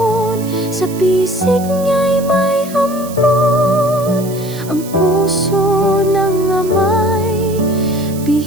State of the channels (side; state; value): right; noise; hiss, 16 dB below the sound